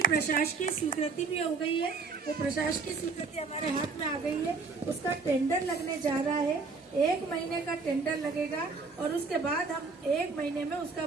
प्रशासकीय स्वीकृति भी हो गई है। वो प्रशासकीय स्वीकृति हमारे हाथ में आ गई है, उसका टेंडर लगने जा रहा है, 1 महीने का टेंडर लगेगा और उसके बाद हम 1 महीने में उसका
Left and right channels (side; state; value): left; quieter; 4.4 dB